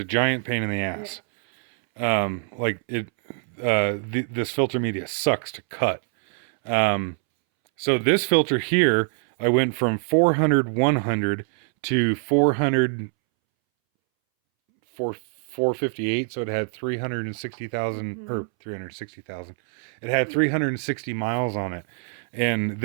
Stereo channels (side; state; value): left; silent; 62 dB below the other